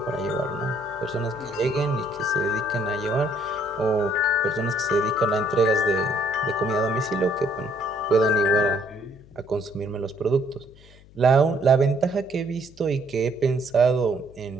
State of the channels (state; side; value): noise; left; hum, 24 dB below the sound